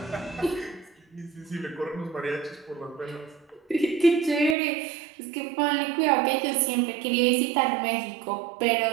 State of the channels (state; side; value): drops out; left; at 4.5 s